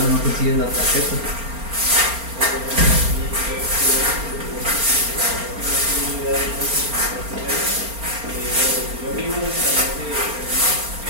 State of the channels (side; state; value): left; late; 4.3 ms